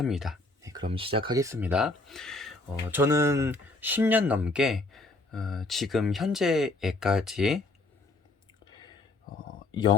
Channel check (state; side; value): quieter; right; 3.1 dB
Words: 네, 그럼 시작하겠습니다. 저는 10년 넘게 지금 현재에까지